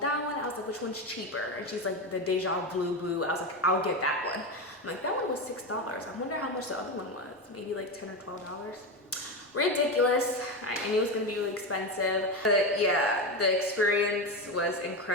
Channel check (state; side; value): normal; both; correlation 0.16